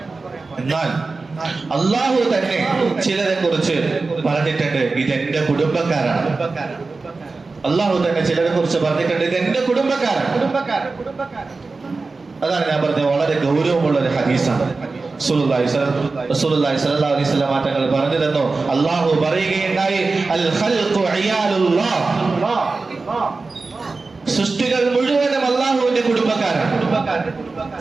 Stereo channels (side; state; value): left; quieter; 3.9 dB